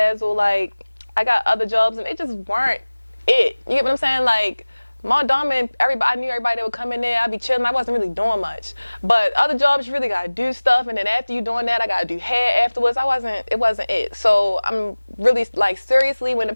like, I got other jobs, and they just weren't it. You get what I'm saying? Like, Maldon, I knew everybody that would come in there. I'd be chilling. I wasn't really doing much. But other jobs, you really got to do stuff. And then after you doing that, I got to do hair afterwards. It wasn't it. So I'm really, like, seriously, when the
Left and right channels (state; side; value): inverted; both; correlation -1.00